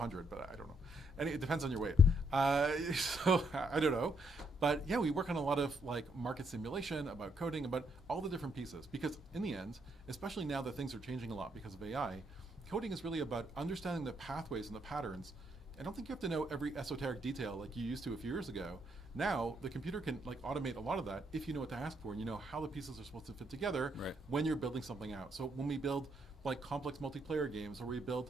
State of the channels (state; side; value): normal; both; correlation 0.74